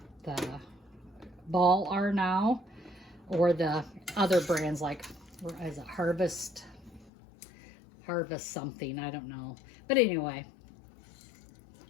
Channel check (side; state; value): right; drops out; at 7.1 s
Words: the ball are now, or the other brands like, is it Harvest something, I don't know. But anyway,